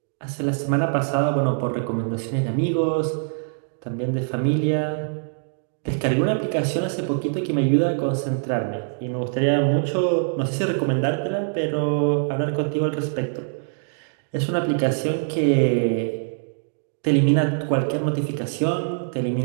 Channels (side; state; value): left; silent; digital silence